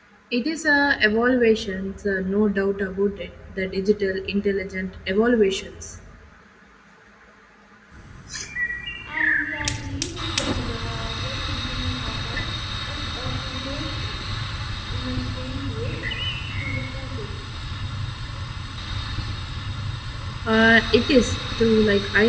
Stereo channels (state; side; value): identical; both; correlation 1.00